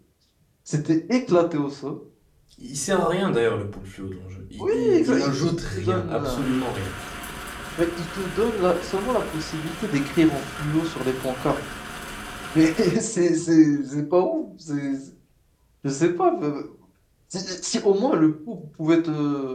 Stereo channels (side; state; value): both; identical; correlation 1.00